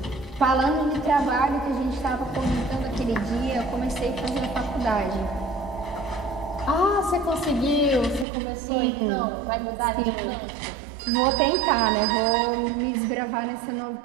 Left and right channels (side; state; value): left; drops out; at 8.2 s